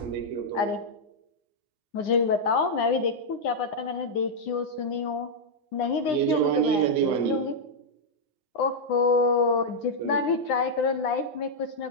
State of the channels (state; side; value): late; right; 9.8 ms